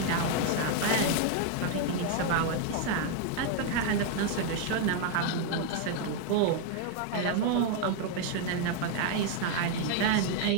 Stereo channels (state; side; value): different; both; correlation 0.00